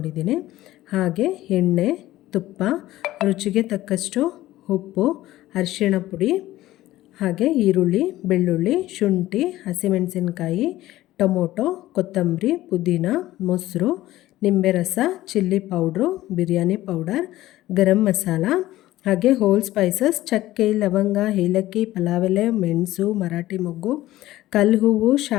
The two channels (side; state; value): right; quieter; 15.7 dB